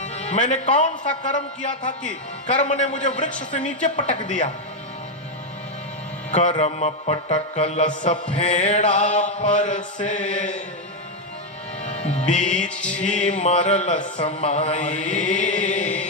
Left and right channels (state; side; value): normal; both; correlation 0.04